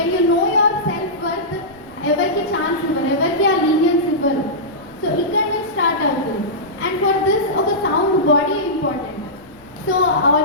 you know your self worth ఎవరికి chance ఇవ్వరు, ఎవరికి ఆ లీనియన్స్ ఇవ్వరు. సో ఇక్కడ నుంచి స్టార్ట్ అవుతుంది. అండ్ ఫర్ దిస్ ఒక sound body important. So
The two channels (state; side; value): noise; left; rumble, 29 dB below the sound